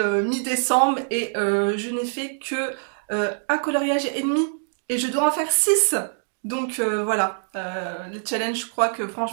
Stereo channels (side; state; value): left; silent; digital silence